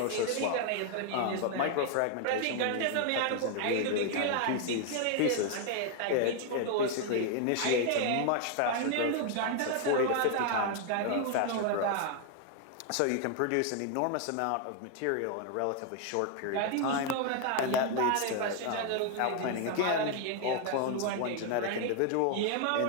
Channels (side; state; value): both; different; correlation 0.00